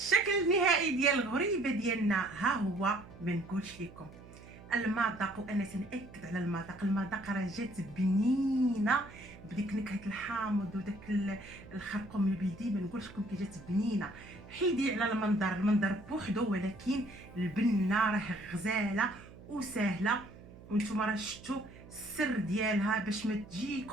النهائي ديال الغريبه ديالنا ها هو. ما نقولش لكم المذاق، وانا تنأكد على المذاق. المذاق راه جات بنينه بديك نكهه الحامض وداك الخرقوم البلدي. ما نقولش لكم كي جات بنينه. حيدي على المنظر بوحدو، ولكن البنه راه غزاله وسهله. وانتم راه شفتوا السر ديالها باش ما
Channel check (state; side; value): noise; right; hum, 19 dB below the sound